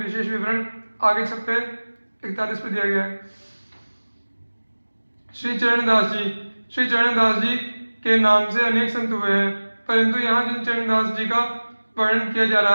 विवरण आगे छप्पे 41 पर दिया गया है। श्री चरणदास जी, श्री चरणदास जी के नाम से अनेक संत हुए हैं, परंतु यहाँ जिन चरणदास जी का वर्णन किया जा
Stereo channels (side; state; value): both; inverted; correlation -1.00